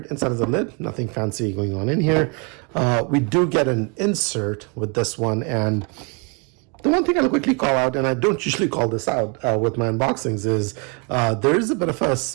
inside of the lid, nothing fancy going on in here. We do get an insert with this one, and the one thing I'll quickly call out, and I don't usually call this out with my unboxings, is there is a bit of a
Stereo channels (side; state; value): left; quieter; 33.5 dB